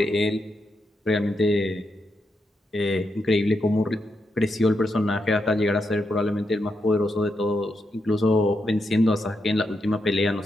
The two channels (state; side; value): normal; both; correlation 0.84